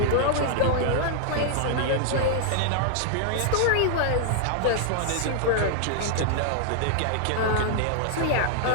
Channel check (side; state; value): both; different; correlation 0.00